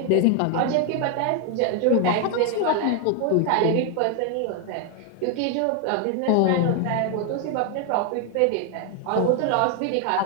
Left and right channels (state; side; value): different; both; correlation 0.01